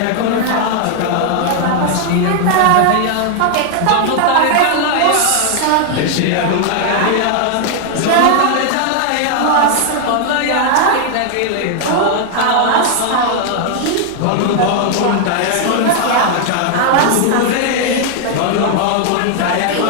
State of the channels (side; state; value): both; different; correlation 0.00